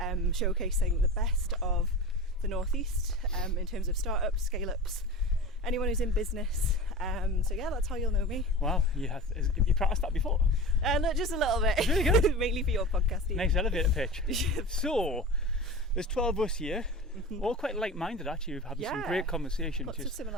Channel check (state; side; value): normal; both; correlation 0.32